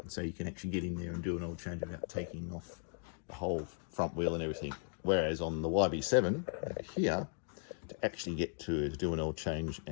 so you can actually get in there and do an oil change without taking off the whole front wheel and everything. Whereas on the YB7 over here, to actually get to do an oil change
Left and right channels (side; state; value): right; silent; 53 dB below the other